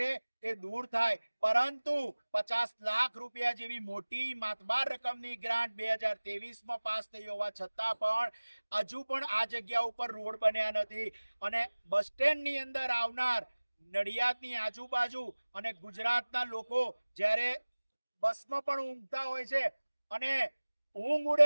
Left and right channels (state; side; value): inverted; both; correlation -1.00